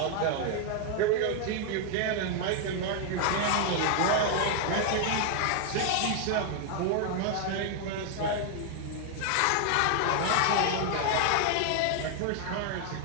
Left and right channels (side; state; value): both; different; correlation 0.00